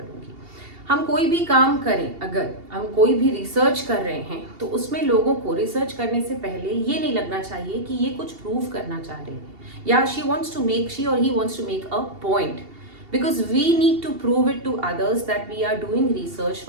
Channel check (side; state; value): left; late; 2.8 ms